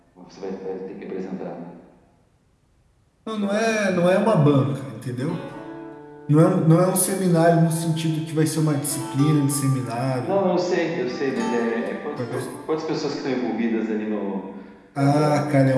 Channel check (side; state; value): both; identical; correlation 1.00